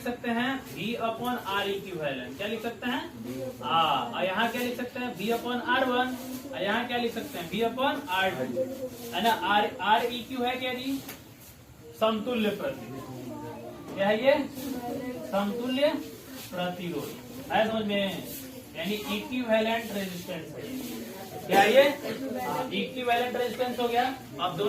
सकते हैं V/R इक्विवेलेंट, क्या लिख सकते हैं, यहाँ क्या लिख सकते हैं V/R1, यहाँ क्या लिख सकते हैं V/R2 है ना। R EQ है क्या जी, समतुल्य प्रतिरोध, क्या है ये, समतुल्य प्रतिरोध है समझ में, यानी इक्विवेलेंट रेजिस्टेंस है, क्या ये इक्विवेलेंट रेजिस्टेंस हो गया। अब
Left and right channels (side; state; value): both; identical; correlation 1.00